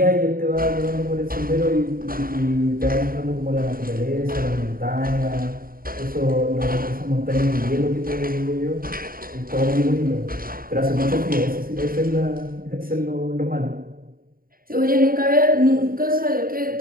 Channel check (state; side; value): late; left; 0.42 ms